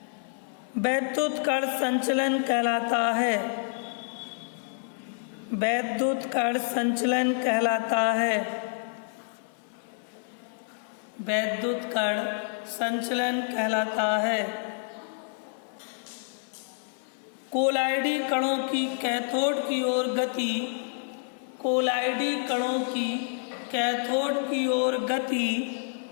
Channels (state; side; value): silent; right; digital silence